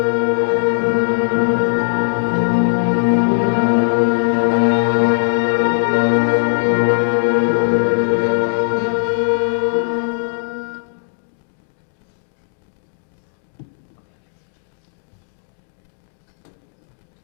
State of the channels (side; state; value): right; silent; digital silence